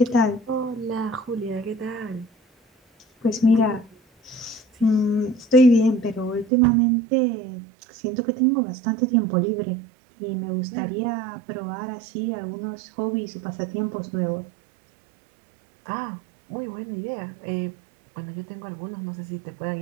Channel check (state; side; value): drops out; left; at 6.5 s